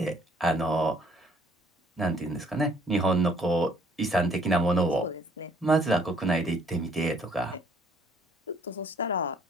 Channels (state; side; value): normal; both; correlation 0.62